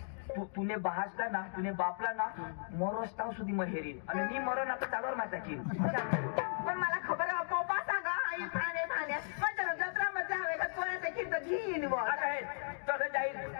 तुने बहासला ना तुने बापला ना मरोस्ताव सुधी महेरीन आणि मी मरो ना तर चालवर माझा की पण मला खबर आहे पप्पा सांगा आई भाणे भाण्या म्हणजे जत्रा मध्ये हवे का कोणाचं खिंड घेईन बुवा आता हे तसं जाईल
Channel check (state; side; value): silent; right; digital silence